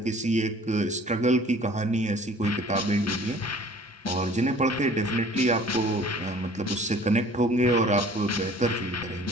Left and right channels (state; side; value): normal; both; correlation 0.50